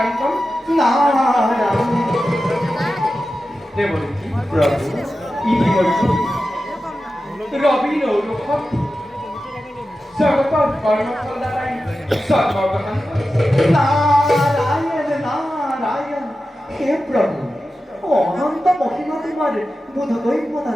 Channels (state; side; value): normal; both; correlation 0.93